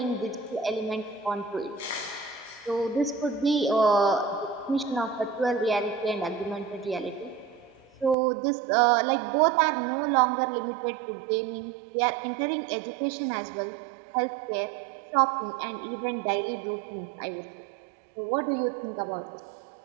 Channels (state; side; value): drops out; left; at 8.2 s